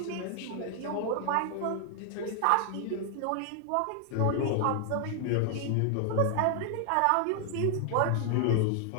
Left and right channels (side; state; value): both; different; correlation 0.00